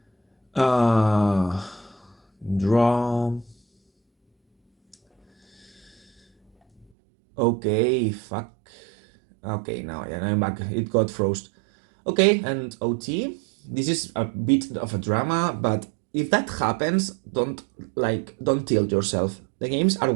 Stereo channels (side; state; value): left; drops out; at 6.9 s